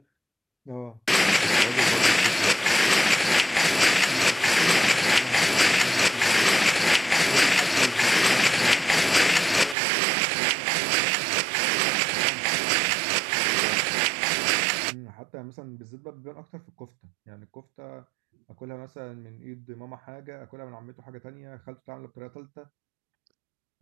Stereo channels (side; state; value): left; drops out; at 9.8 s